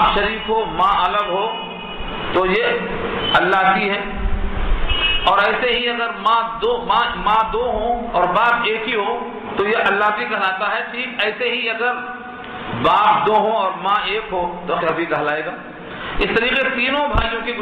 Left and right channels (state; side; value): identical; both; correlation 1.00